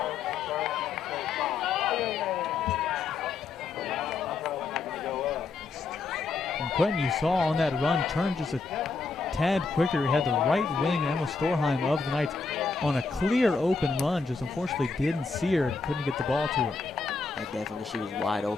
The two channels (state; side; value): quieter; right; 4.3 dB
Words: And Quentin, you saw on that run, turned just a tad quicker. He had the right wing, Emma Storheim of the Knights, on a clear open run. Just unfortunately didn't see her and couldn't get the ball to her. And definitely she was wide